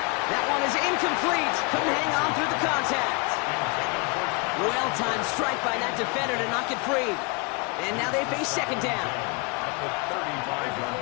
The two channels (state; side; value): quieter; right; 31.0 dB